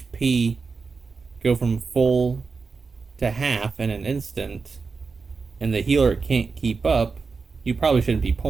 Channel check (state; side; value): quieter; left; 4.7 dB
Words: go from full to half in an instant, and the healer can't keep up, you probably shouldn't be